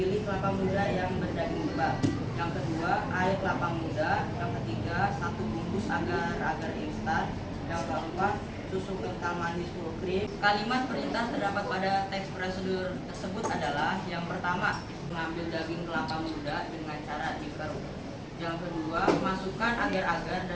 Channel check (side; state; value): both; identical; correlation 1.00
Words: kelapa muda yang berdaging tebal. Yang kedua, air kelapa muda. Yang ketiga, 1 bungkus agar instan. Yang keempat, susu kental manis full cream. Kalimat perintah terdapat pada teks prosedur tersebut adalah yang pertama, mengambil daging kelapa muda dengan cara dikeruk. Yang kedua, masukkan agar-agar